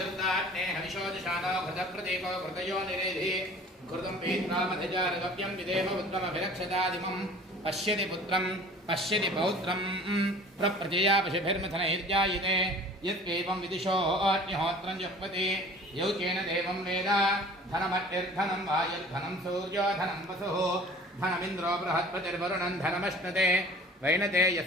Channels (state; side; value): normal; both; correlation 0.46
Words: हविषोदिशानो घृतप्रतीको घृतयो निरेधि घृतं पीत्रामधिजारगव्यं विदेव उत्तमभिरक्षतादिमं पश्यति पुत्रं पश्यति पौत्रं प्रप्रजया पशुभिर्मिथनैर्जायते यत्केवं विदिशो अग्निहोत्रं जुह्वति यौकेन देवं वेद धनमट्टिर्धनं वायुर्धनं सूर्यो धनं वसुः धनमिन्द्रो बृहस्पतिर्वरुणं धनमश्नुते वैनते